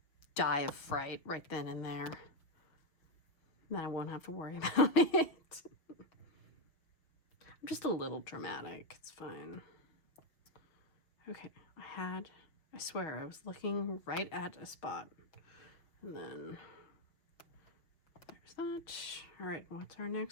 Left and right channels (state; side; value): late; right; 5.7 ms